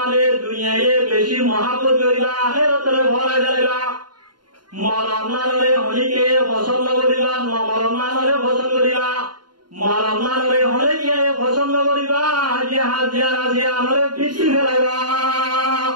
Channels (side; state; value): left; late; 0.71 ms